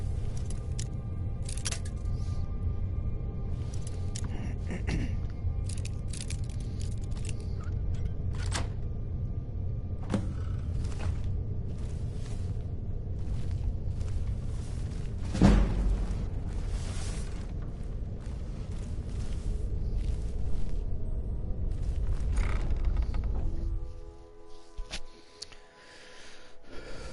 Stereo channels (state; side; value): identical; both; correlation 1.00